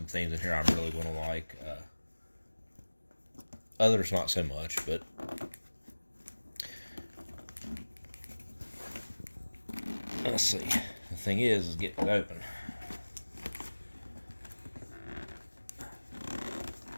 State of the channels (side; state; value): both; inverted; correlation -1.00